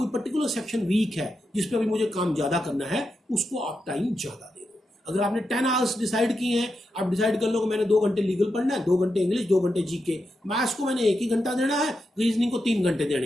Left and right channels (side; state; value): both; normal; correlation 0.87